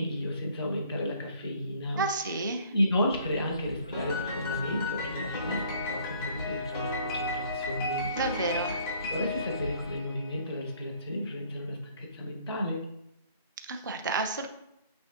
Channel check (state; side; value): inverted; both; correlation -0.58